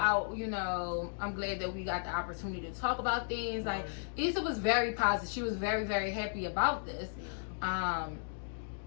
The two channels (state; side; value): silent; right; digital silence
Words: You know, I'm glad that we got the opportunity to talk about things." Like Issa was very positive. She was very, very happy about this.